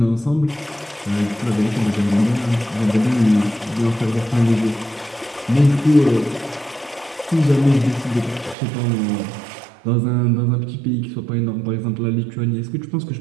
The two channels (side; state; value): left; drops out; at 8.6 s